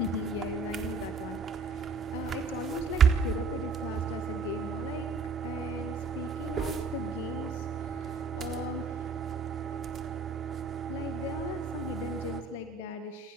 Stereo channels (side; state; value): left; quieter; 4.0 dB